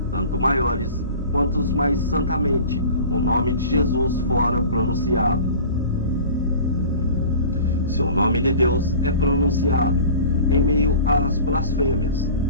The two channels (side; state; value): both; inverted; correlation -0.40